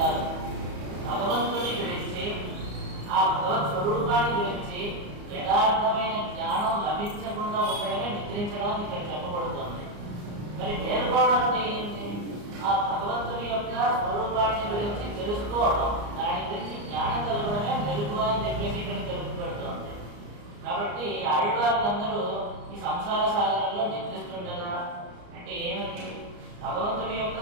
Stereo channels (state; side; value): late; left; 34 ms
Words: భగవంతుని గురించి ఆ భగవత్ స్వరూపాన్ని గురించి యథార్థమైన జ్ఞానం లభించకుండా ఉండడమే నిద్రించడం ఇక్కడ చెప్పబడుతుంది. మరి మేల్కోవడం అంటే ఏంటి? ఆ భగవంతుని యొక్క స్వరూపాన్ని గురించి తెలుసుకోవడం, దాని గురించి జ్ఞానం కలగడమే మెలుగు అని చెప్పేసి ఇక్కడ తెలుపబడుతుంది. కాబట్టి ఆళ్వార్లందరూ ఈ సంసార సాగరంలో నిద్రిస్తుండగా అంటే ఏమిటి? భగవంతుడి యొక్క